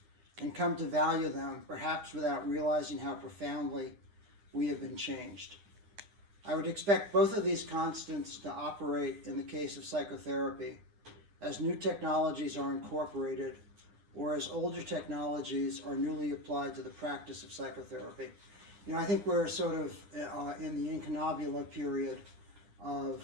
and come to value them, perhaps without realizing how profoundly we have been changed. I would expect both of these constants to operate in the case of psychotherapy, as new technologies are incorporated or as older technologies are newly applied to the practice of psychotherapy. You know, I think we're sort of in the incunabula period of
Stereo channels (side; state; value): left; late; 9.8 ms